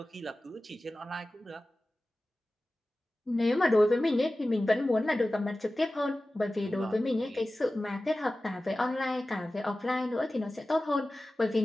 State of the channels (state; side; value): normal; both; correlation 0.96